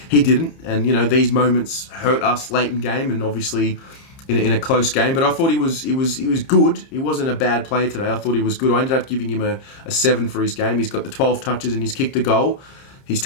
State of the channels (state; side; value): late; right; 30 ms